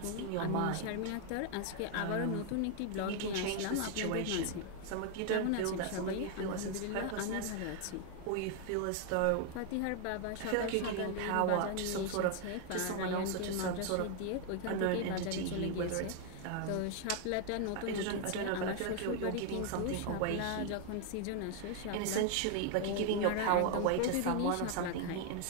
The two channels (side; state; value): both; different; correlation 0.00